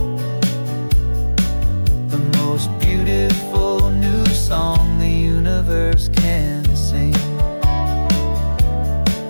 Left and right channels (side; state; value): both; inverted; correlation -1.00